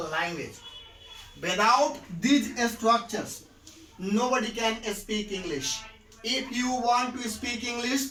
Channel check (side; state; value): both; identical; correlation 1.00